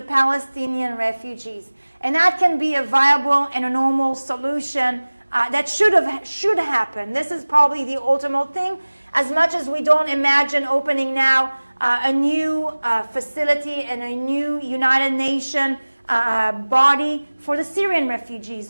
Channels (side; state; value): both; inverted; correlation -1.00